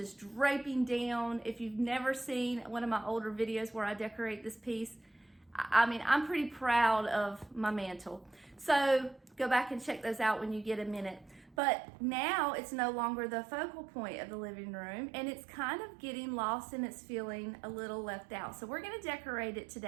draping down. If you've never seen one of my older videos where I decorate this piece, I'm pretty proud of my mantle. So go back and check those out when you get a minute. But now it's no longer the focal point of the living room, and it's kind of getting lost and it's feeling a little left out. So we're gonna decorate it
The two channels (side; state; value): left; drops out; at 11.6 s